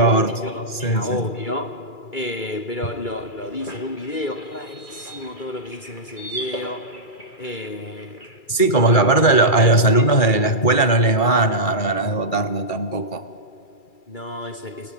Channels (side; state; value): right; late; 2.3 ms